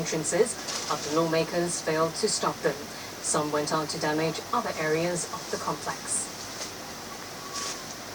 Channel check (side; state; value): both; identical; correlation 1.00